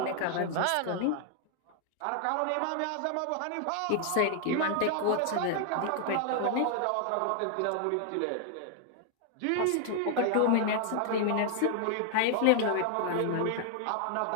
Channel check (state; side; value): different; both; correlation 0.00